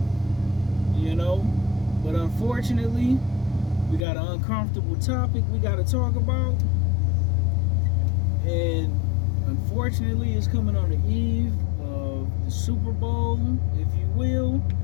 but unfortunately, we got an uncomfortable topic we got to talk about, and unfortunately, it's coming on the eve of the Super Bowl, if you will.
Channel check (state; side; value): drops out; right; at 4.0 s